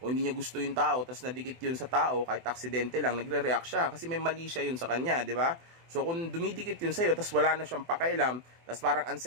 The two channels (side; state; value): left; late; 24 ms